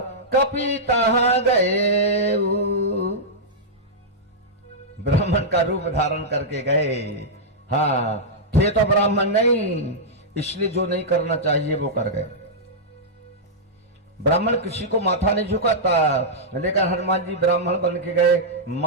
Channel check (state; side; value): normal; both; correlation -0.10